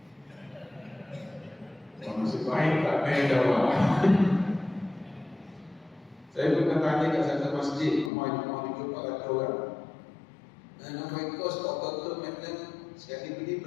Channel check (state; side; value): drops out; right; at 8.1 s